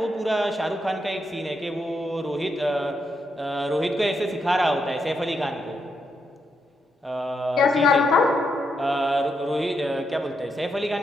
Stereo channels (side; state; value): both; normal; correlation 0.81